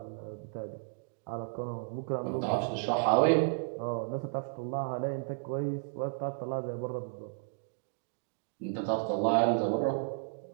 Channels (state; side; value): silent; left; digital silence